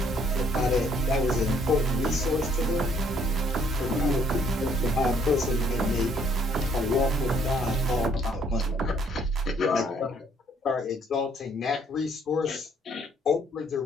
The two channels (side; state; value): both; normal; correlation 0.64